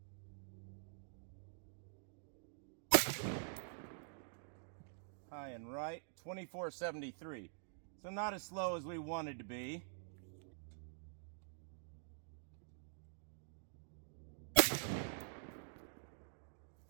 High and right, 24.73. So not as slow as we wanted to be.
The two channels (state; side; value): silent; left; digital silence